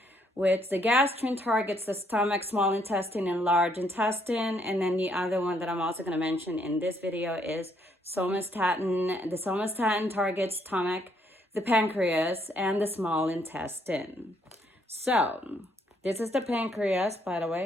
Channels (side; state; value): both; normal; correlation 0.70